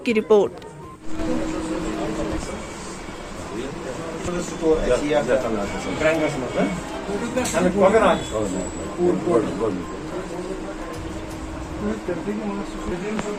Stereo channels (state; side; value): identical; both; correlation 1.00